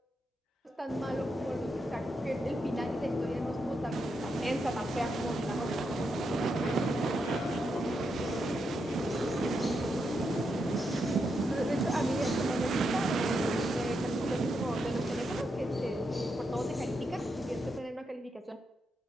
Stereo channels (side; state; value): both; normal; correlation 0.83